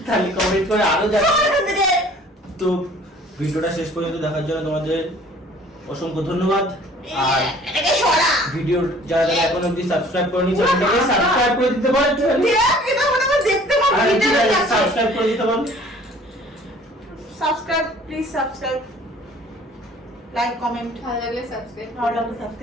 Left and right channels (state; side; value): normal; both; correlation 0.52